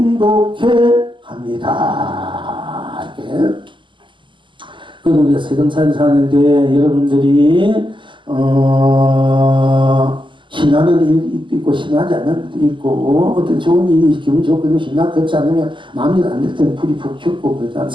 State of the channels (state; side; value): late; left; 0.23 ms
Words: 합니다. 이렇게. 그리고 우리가 세상살이 사는데 여러분들이 신나는 일도 있고 신나지 않는 일도 있고 어떤 좋은 일이 기분 좋고 신나 그렇지 않으면 마음이 안 될 때는 불이 푹 튀고 그렇지